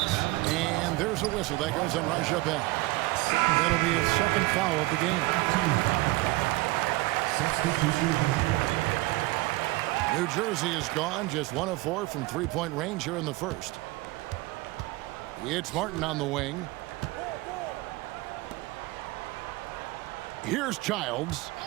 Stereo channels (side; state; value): left; quieter; 20.6 dB